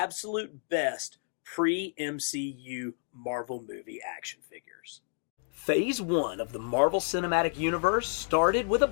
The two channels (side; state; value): right; silent; 58 dB below the other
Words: best pre-MCU Marvel movie action figures. Phase 1 of the Marvel Cinematic Universe started with a